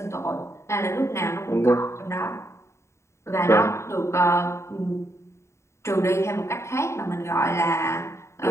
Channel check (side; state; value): right; late; 0.14 ms